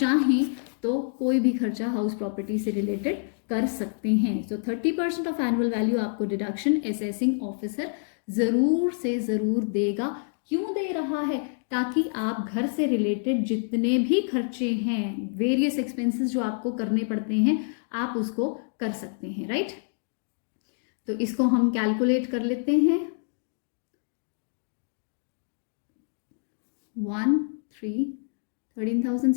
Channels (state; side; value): silent; right; digital silence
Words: तो कोई भी खर्चा हाउस प्रॉपर्टी से रिलेटेड कर सकते हैं। सो 30% ऑफ एनुअल वैल्यू आपको डिडक्शन असेसिंग ऑफिसर ज़रूर से ज़रूर देगा। क्यों दे रहा है? ताकि आप घर से रिलेटेड जितने भी खर्चे हैं, वेरियस एक्सपेंसेस जो आपको करने पड़ते हैं, आप उसको कर सकते हैं, राइट। तो इसको हम कैलकुलेट कर लेते हैं।